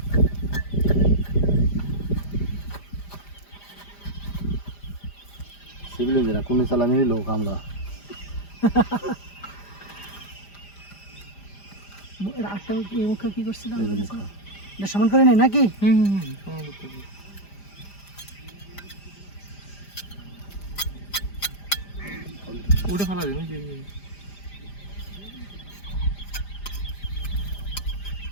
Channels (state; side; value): late; right; 5.0 ms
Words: সিভিল ইঞ্জিনিয়ার কোন চালামেরই লোক আমরা আটটা এই মুখে কি করছিলাম এটা সমান করে নাই নাকি উঠে ফেলা দিন